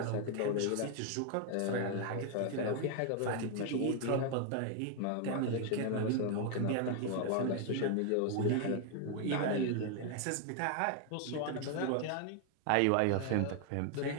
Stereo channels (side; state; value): both; different; correlation 0.00